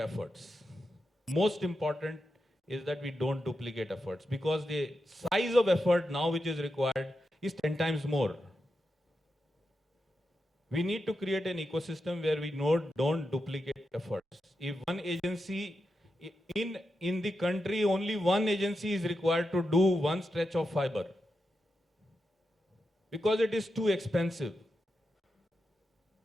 Most important is that we don't duplicate efforts, because the size of effort now which is required is 10 times more. We need to create an ecosystem where we don't duplicate efforts. If one agency in the country, only one agency is required to do one stretch of fiber, because it is too expensive,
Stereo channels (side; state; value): both; normal; correlation 0.88